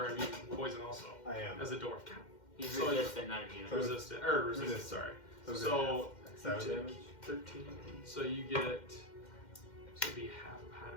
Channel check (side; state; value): right; late; 2.1 ms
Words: immune to poison also I am. as a dwarf. He's So- resistant, not immune. Resistant, or resistant. Sorry. So Seven you take damage? 13. So you get. So it'd be half